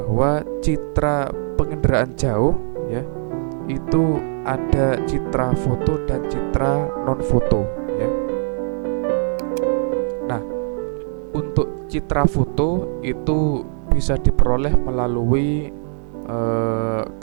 citra penginderaan jauh ya, itu ada citra foto dan citra non foto ya. Nah, untuk citra foto itu bisa diperoleh melalui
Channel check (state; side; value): silent; left; digital silence